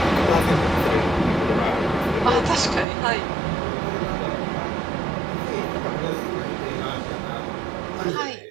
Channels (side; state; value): left; drops out; at 2.9 s